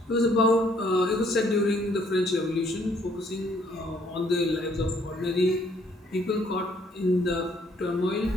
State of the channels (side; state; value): both; normal; correlation 0.65